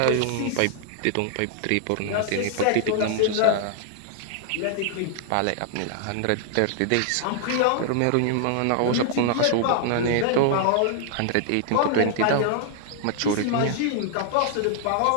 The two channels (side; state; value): both; different; correlation -0.01